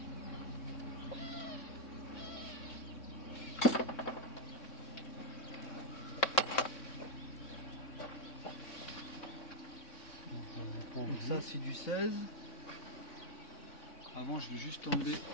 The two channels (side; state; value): right; late; 3.6 ms